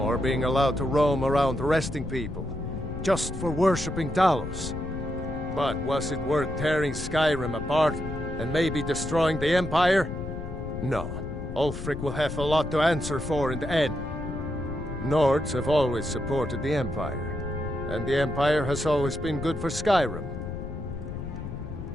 being allowed to roam around arresting people, just for worshipping Talos. But was it worth tearing Skyrim apart and maybe destroying the Empire? No. Ulfric will have a lot to answer for in the end. Nords have always supported the Empire, and the Empire has always been good for Skyrim.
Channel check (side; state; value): left; noise; rumble, 8 dB below the sound